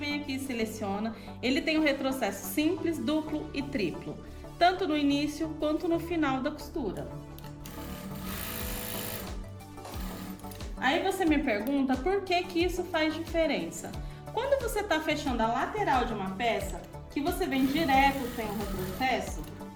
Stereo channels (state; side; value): identical; both; correlation 1.00